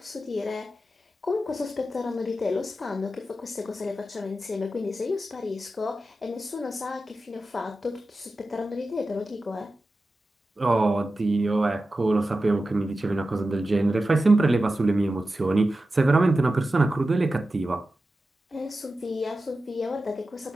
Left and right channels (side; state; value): both; normal; correlation 0.93